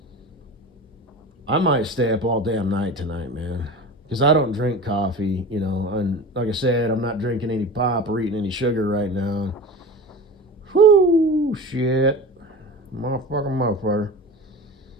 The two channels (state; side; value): normal; both; correlation 0.32